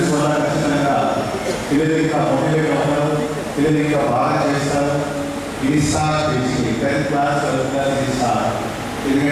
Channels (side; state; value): both; identical; correlation 1.00